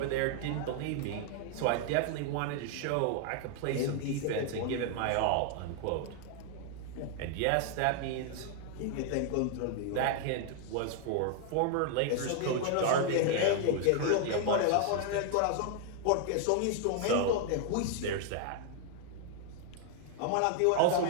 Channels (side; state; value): both; different; correlation 0.00